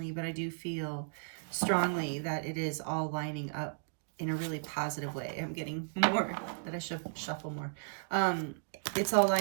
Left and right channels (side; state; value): left; silent; digital silence